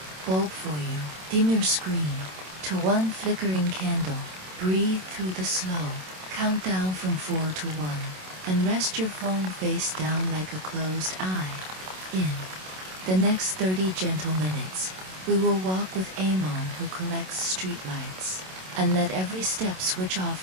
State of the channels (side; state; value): left; late; 27 ms